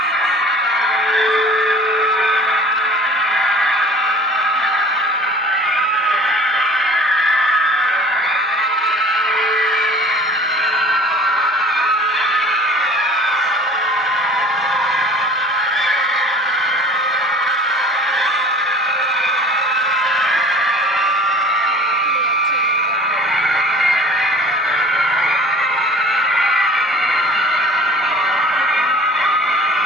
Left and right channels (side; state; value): both; normal; correlation 0.45